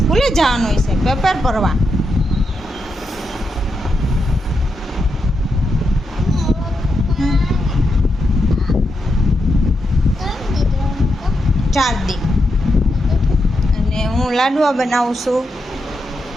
જવાનું હોય છે, પેપર ભરવા। ચાર દી અને હું લાડવા બનાવું છું।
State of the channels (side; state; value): both; normal; correlation 0.84